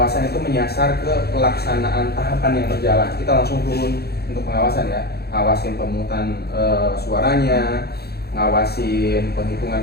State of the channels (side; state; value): right; late; 0.46 ms